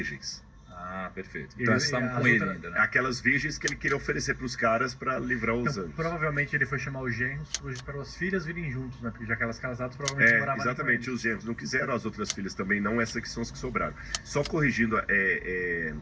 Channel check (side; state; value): both; identical; correlation 1.00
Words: Ah, perfeito. Então eles estavam com ele ainda, né? Aquelas virgens que ele queria oferecer para os caras para livrar os anjos. Provavelmente ele foi chamar os genros para as filhas virem juntos, né? Porque já que elas casadas provavelmente moravam. Exatamente, os genros não quiseram, as outras filhas também não, essas que são as que sobraram. Só corrigindo,